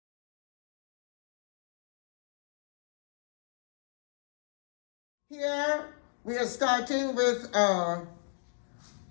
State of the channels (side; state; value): right; silent; digital silence